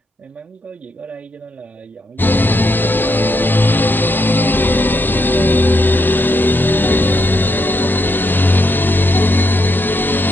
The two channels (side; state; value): both; normal; correlation 0.78